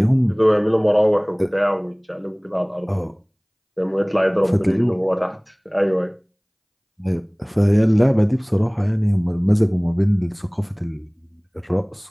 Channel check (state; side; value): identical; both; correlation 1.00